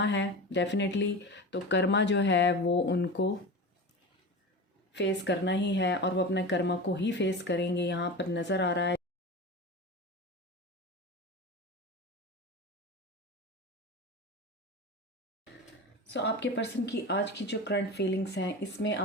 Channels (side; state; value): both; normal; correlation 0.28